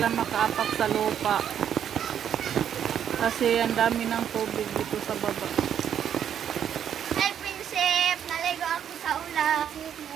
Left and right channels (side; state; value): left; quieter; 9.2 dB